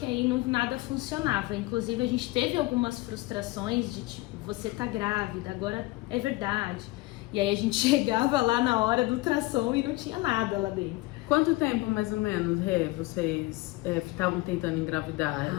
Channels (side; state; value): right; quieter; 20.5 dB